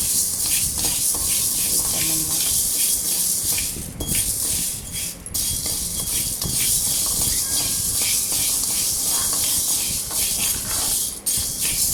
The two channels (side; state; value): both; identical; correlation 1.00